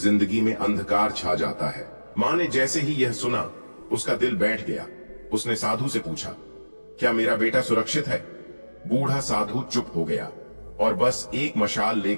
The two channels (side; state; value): both; inverted; correlation -1.00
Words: में अंधकार छा जाता है। मां ने जैसे ही यह सुना, उसका दिल बैठ गया। उसने साधु से पूछा, क्या मेरा बेटा सुरक्षित है? बूढ़ा साधु चुप हो गया और बस एक मशाल